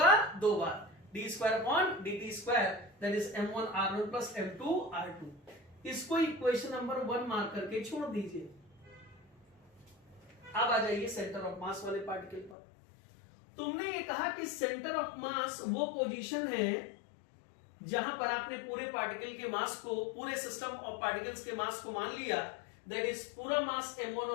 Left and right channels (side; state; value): right; drops out; at 12.6 s